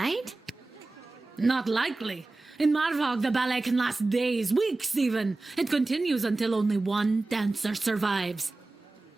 Not likely. In Marvog, the ballet can last days, weeks even. It continues until only one dancer survives.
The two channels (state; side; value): quieter; left; 3.2 dB